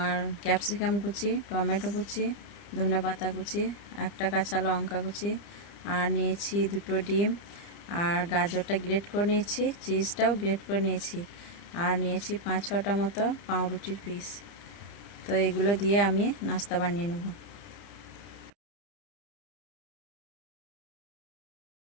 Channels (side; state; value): right; late; 30 ms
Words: ক্যাপসিকাম কুচি, টমেটো কুচি, ধনেপাতা কুচি, একটা কাঁচা লঙ্কা কুচি, আর নিয়েছি দুটো ডিম, আর গাজরটা গ্রেট করে নিয়েছি, চিজটাও গ্রেট করে নিয়েছি, আর নিয়েছি 5-6টা মতো পাউরুটির পিস। তো এগুলো দিয়ে আমি নাস্তা বানিয়ে নেব।